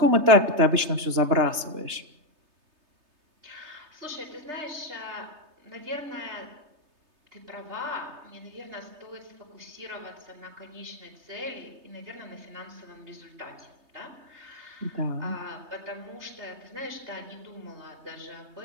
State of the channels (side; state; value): left; late; 3.3 ms